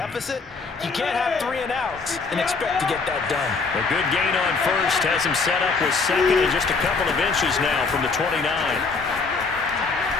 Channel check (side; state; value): right; quieter; 4.4 dB